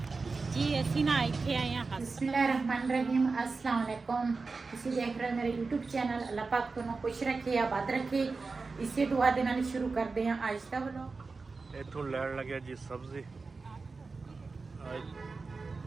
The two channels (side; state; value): left; quieter; 4.2 dB